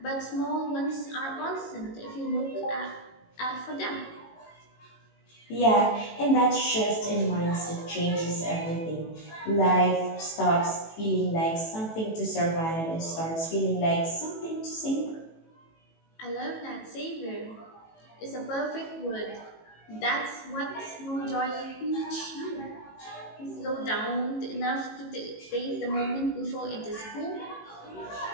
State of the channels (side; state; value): right; late; 18 ms